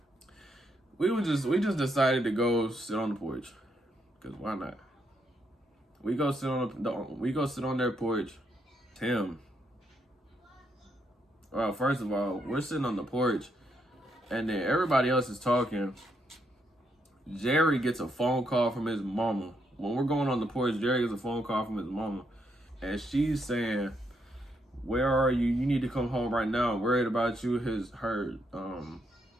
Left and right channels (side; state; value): both; normal; correlation 0.77